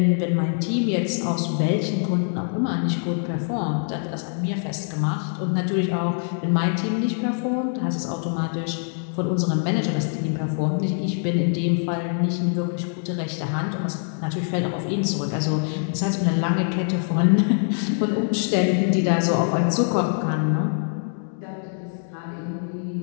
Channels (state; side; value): silent; right; 63 dB below the other